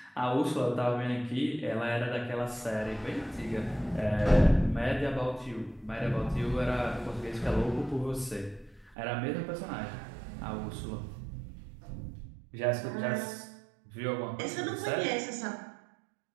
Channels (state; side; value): drops out; left; at 9.0 s